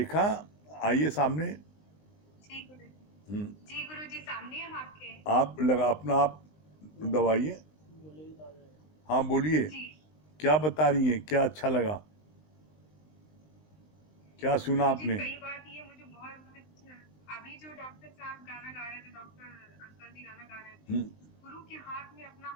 आइए सामने। जी गुरु जी। हम्म, जी गुरु जी, सामने हम आपके। आप लगा अपना आप दबाइए। हाँ बोलिए, जी क्या बता रही हैं, क्या अच्छा लगा, क्या सुना गुरु जी, आपने? कई बात ये मुझे बहुत अच्छा, अभी जो डॉक्टर साहब गाना गा रहे थे, डॉक्टर अंकल जी गाना गा रहे थे, हम्म, गुरु के हाथ में अपना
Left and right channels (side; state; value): right; late; 19 ms